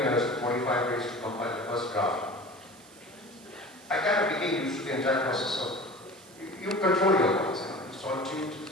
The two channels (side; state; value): right; noise; hiss, 23 dB below the sound